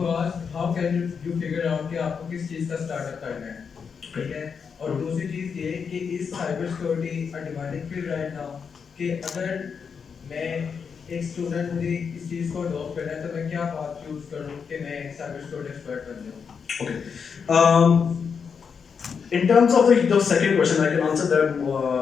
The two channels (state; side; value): quieter; right; 6.2 dB